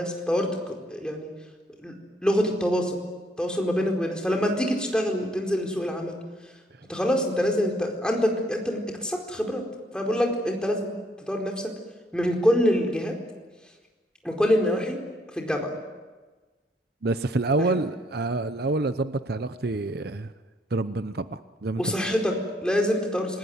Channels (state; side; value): normal; both; correlation 0.69